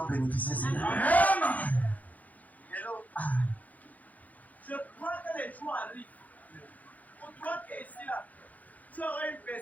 bénéficier de cela. Amen. Hello. Je crois que les jours arrivent. Pour toi qui es ici là, tu auras une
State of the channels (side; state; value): right; late; 0.078 ms